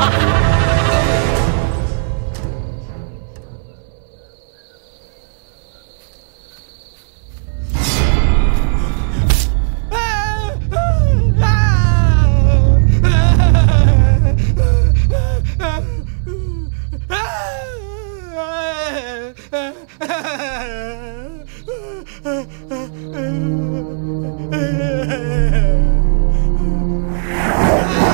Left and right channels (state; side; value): silent; left; 67 dB below the other